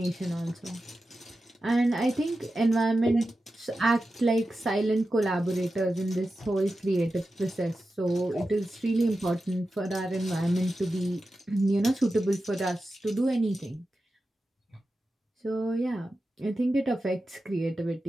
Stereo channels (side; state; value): both; normal; correlation 0.92